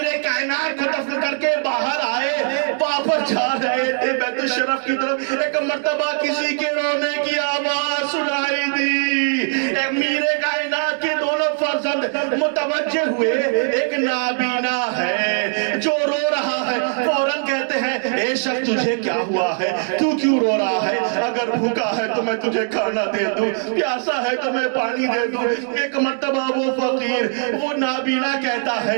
کائنات کو دفن کر کے باہر آئے، واپس جا رہے تھے بیت الشرف کی طرف، ایک مرتبہ کسی کے رونے کی آواز سنائی دی۔ امیر کائنات کے دونوں فرزند متوجہ ہوئے، ایک نابینا ہے جو رو رہا ہے، فوراً کہتے ہیں اے شخص تجھے کیا ہوا ہے، تو کیوں رو رہا ہے؟ اگر بھوکا ہے تو میں تجھے کھانا دے دوں، پیاسا ہے تو میں پانی دے دوں۔ ایک مرتبہ وہ فقیر، وہ نابینا کہتا ہے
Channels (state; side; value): silent; left; 55 dB below the other